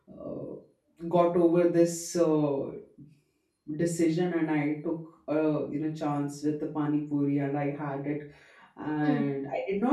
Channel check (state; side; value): identical; both; correlation 1.00